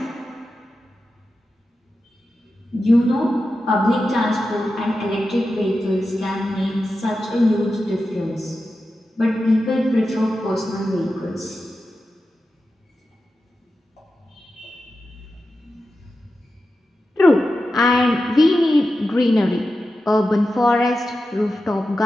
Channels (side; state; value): both; normal; correlation 0.91